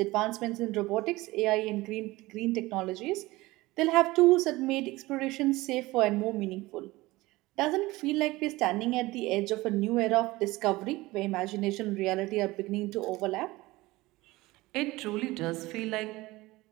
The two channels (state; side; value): quieter; left; 19.9 dB